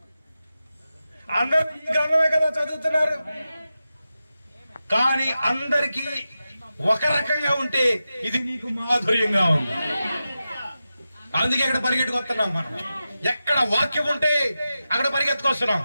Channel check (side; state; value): both; inverted; correlation -0.92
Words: అందరూ ఈ గ్రంథమే కదా చదువుతున్నారు. కానీ అందరికీ ఒక రకంగా ఉంటే ఇది నీకు మాధుర్యంగా ఉంది. అందుకే ఇక్కడ పరిగెట్టుకొస్తున్నాం మనం. ఎక్కడ వాక్యం ఉంటే అక్కడ పరిగెత్తుకొస్తున్నాం.